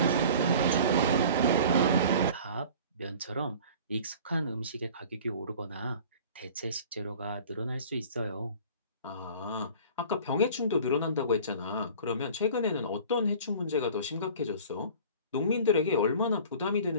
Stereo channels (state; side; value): inverted; both; correlation -0.43